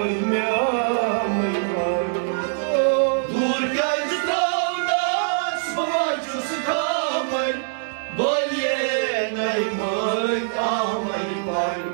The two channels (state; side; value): silent; left; digital silence